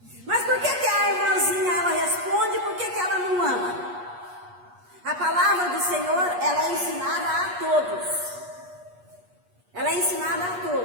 Mas por que a irmãzinha ela responde e por que ela não ama? A palavra do Senhor, ela é ensinada a todos. Ela é ensinada a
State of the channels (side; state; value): left; late; 8.3 ms